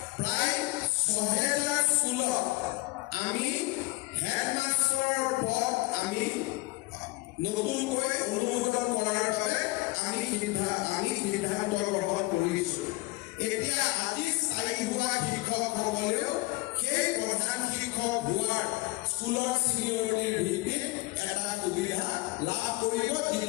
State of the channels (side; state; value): right; quieter; 22.5 dB